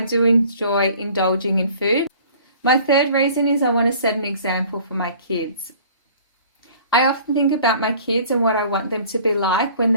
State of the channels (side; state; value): both; inverted; correlation -0.50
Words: enjoy indulging in food. My third reason is I want to set an example for my kids. I often think about my kids and what I want them to be like when